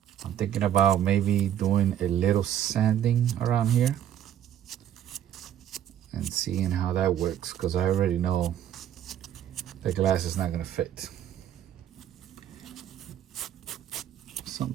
I'm thinking about maybe doing a little sanding around here and seeing how that works, because I already know the glass is not going to fit.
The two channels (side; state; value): left; quieter; 10.5 dB